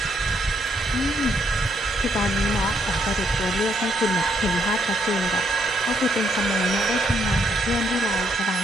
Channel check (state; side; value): normal; both; correlation 0.72